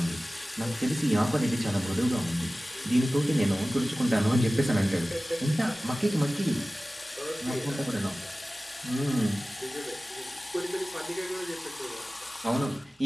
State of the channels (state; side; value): normal; both; correlation 0.97